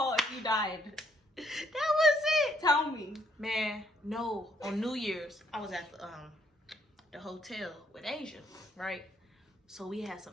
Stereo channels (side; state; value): both; normal; correlation 0.69